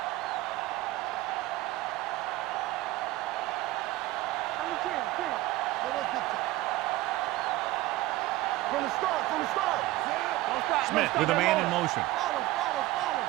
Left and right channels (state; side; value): quieter; left; 17.8 dB